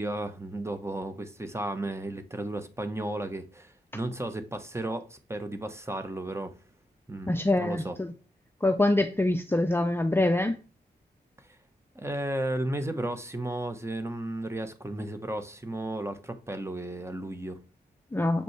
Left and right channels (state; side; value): normal; both; correlation 0.87